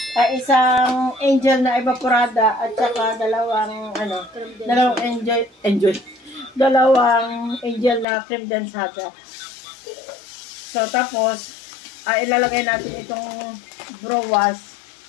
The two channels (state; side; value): drops out; right; at 8.1 s